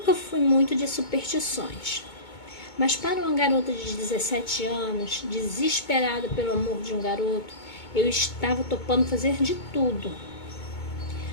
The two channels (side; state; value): right; late; 2.2 ms